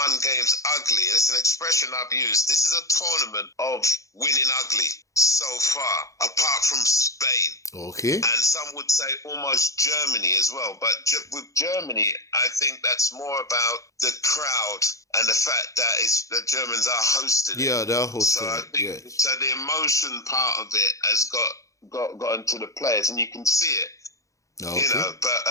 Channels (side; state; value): right; late; 0.15 ms